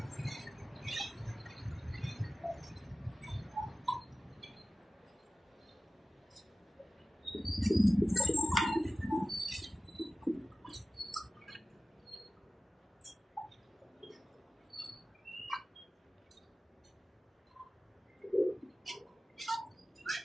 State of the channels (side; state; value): both; normal; correlation 0.95